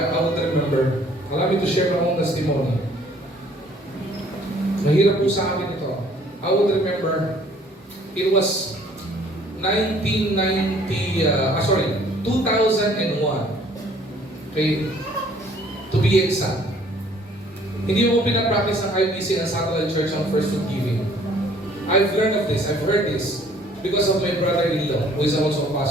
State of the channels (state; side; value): normal; both; correlation 0.58